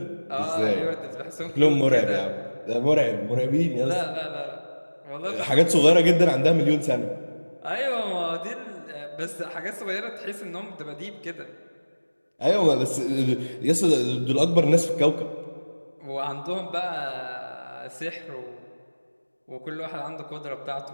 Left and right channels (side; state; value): both; inverted; correlation -1.00